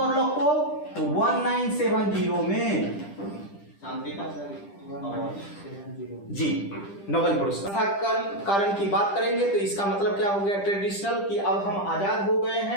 को? तो 1970 में जी नोबेल पुरस्कार। कारण की बात करेंगे तो इसका मतलब क्या हो गया? ट्रेडिशनल कि अब हम आजाद हो गए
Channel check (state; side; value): late; right; 10 ms